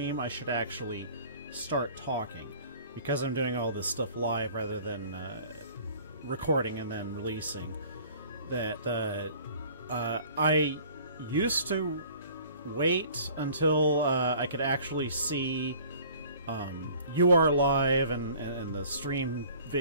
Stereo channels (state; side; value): inverted; both; correlation -0.50